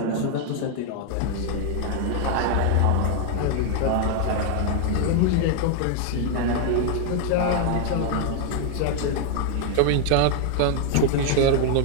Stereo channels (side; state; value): both; different; correlation 0.00